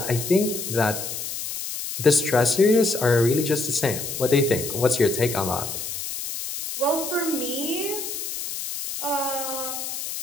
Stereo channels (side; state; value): left; noise; hiss, 6 dB below the sound